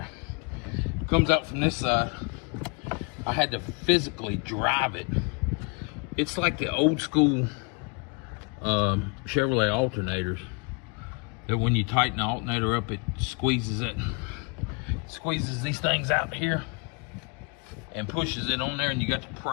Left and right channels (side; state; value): right; quieter; 33.1 dB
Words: It comes out from this side. I had to physically drive it. It's like the old school Chevrolet alternators, that when you tighten the alternator up, it squeezes these things out here and pushes it on there, and you got to